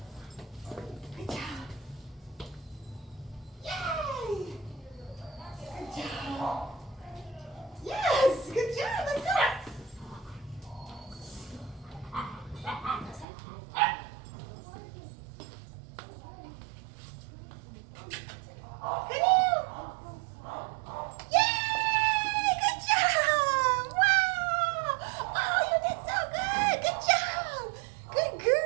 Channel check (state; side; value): drops out; left; at 13.2 s